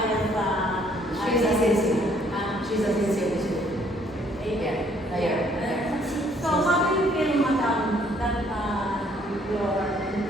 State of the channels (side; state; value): both; normal; correlation 0.64